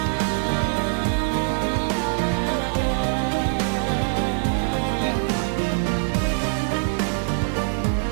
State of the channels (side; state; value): left; silent; digital silence